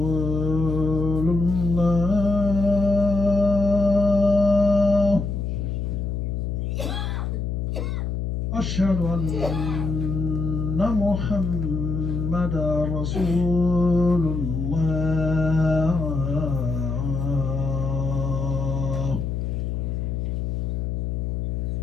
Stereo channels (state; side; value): noise; left; hum, 2 dB below the sound